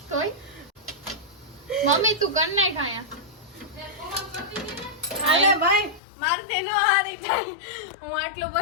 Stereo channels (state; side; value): drops out; right; at 6.0 s